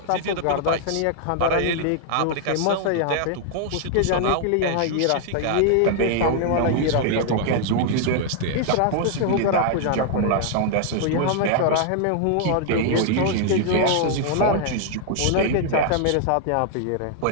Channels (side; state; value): both; different; correlation 0.00